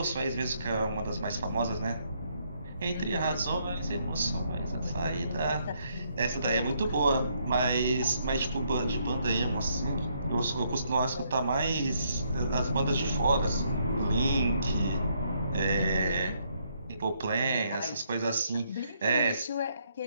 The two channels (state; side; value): inverted; both; correlation -0.73